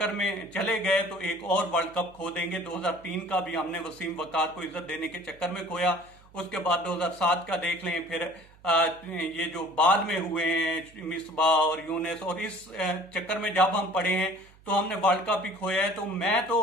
में चले गए तो एक और वर्ल्ड कप खो देंगे। 2003 का भी हमने वसीम वकार को इज्जत देने के चक्कर में खोया, उसके बाद 2007 का देख लें, फिर ये जो बाद में हुए हैं मिसबा और यूनिस, और इस चक्कर में जब हम पड़े हैं तो हमने वर्ल्ड कप ही खोया है। तो मैं तो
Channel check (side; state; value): right; noise; hum, 26 dB below the sound